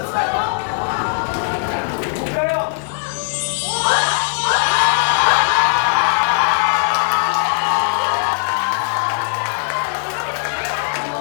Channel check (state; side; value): silent; right; 67 dB below the other